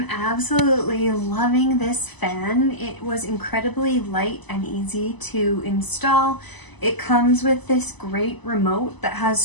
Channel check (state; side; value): late; right; 1.0 ms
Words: absolutely loving this fan. It was incredibly light and easy to install. It comes with this great remote that has